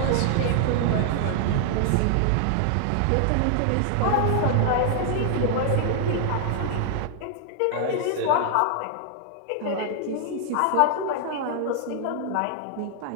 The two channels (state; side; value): different; both; correlation 0.00